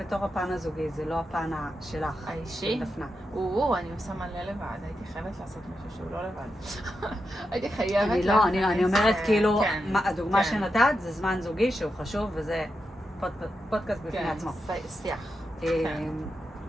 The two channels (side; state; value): both; normal; correlation 0.87